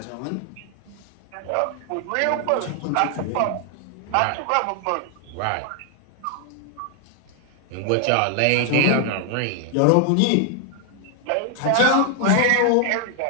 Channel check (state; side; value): different; both; correlation 0.00